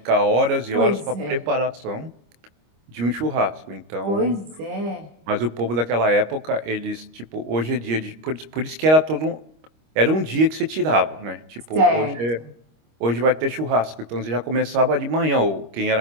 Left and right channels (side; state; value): left; late; 25 ms